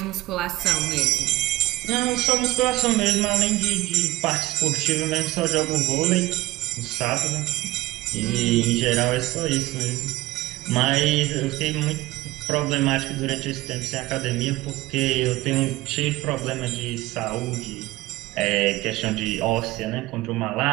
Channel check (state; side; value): quieter; left; 18.3 dB